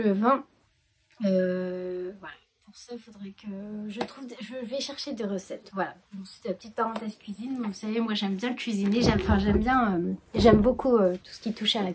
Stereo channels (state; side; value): identical; both; correlation 1.00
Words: Voilà. Pour ça, il faudrait que je vais chercher des recettes. Voilà. C'est la petite parenthèse cuisine. Vous savez, moi, j'aime bien cuisiner. J'aime beaucoup tout ce qui touche à la